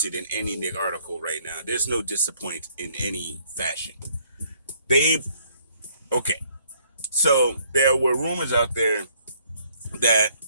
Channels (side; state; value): both; inverted; correlation -0.64